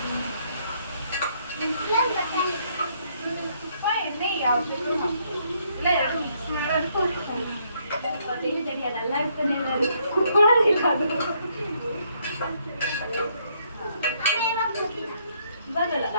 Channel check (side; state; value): both; inverted; correlation -0.70